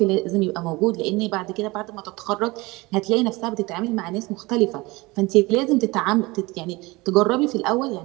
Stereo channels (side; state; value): left; quieter; 22.9 dB